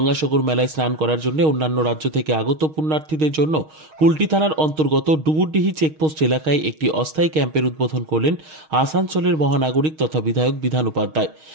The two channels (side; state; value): left; late; 6.4 ms